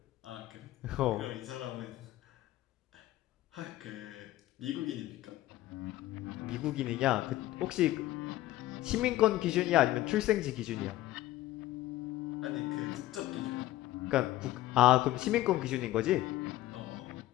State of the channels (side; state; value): right; quieter; 15.5 dB